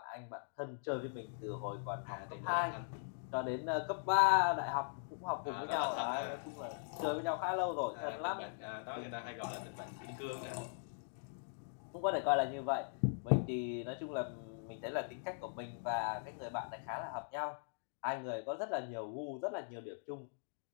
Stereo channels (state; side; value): silent; right; digital silence